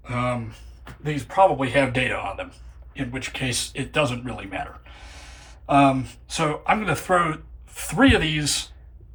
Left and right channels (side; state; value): both; identical; correlation 1.00